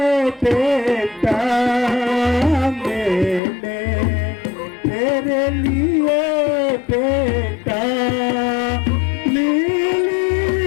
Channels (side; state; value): right; drops out; at 3.4 s